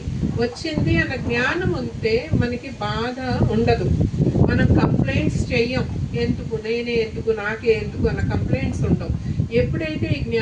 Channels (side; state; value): both; identical; correlation 1.00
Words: వచ్చింది అన్న జ్ఞానం ఉంటే మనకి బాధ ఉండదు. మనం కంప్లైంట్స్ చెయ్యం, ఎందుకు నేనే ఎందుకు నాకే ఎందుకు అన్న కంప్లైంట్స్ ఉండవు. ఎప్పుడైతే ఈ